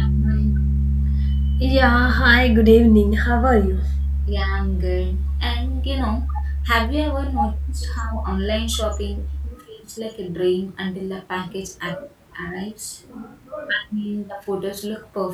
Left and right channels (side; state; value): both; identical; correlation 1.00